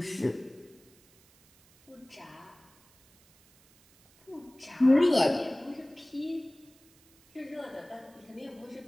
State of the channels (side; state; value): right; noise; hiss, 29 dB below the sound